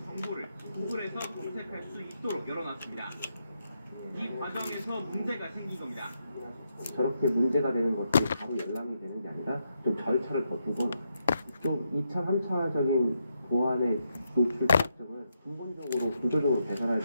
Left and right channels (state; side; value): inverted; both; correlation -0.81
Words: 정보를 구글에서 검색할 수 있도록 열어놨습니다. 이 과정에서 문제가 생긴 겁니다. 저렇게 문제가 되는 것들이 바로 열람이 되는 게 아니라 좀 절차를 더 두거나 좀 2차, 3차적인 보안의 노출 피약점을 근본적으로 구조적으로 개선할